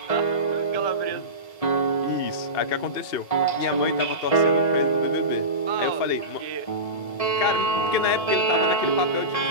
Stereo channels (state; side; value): late; right; 1.7 ms